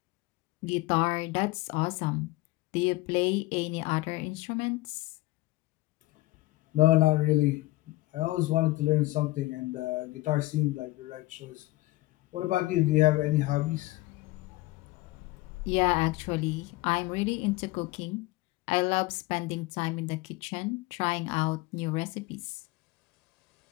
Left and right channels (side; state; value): right; quieter; 19.4 dB